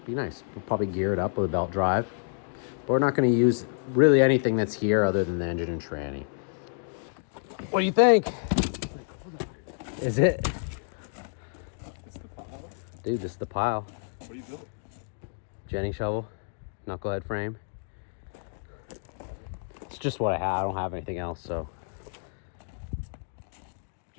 Be nice. We'll probably gear it up with a belt drive. But we're not gonna use really anything that's here other than the engine and tranny. What do you think? Is it? This the pile? Dude, this is the pile. What do you build? Jenny shovel, knucklehead frame. It's just what I have. I don't have anything else, so.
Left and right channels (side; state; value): right; silent; digital silence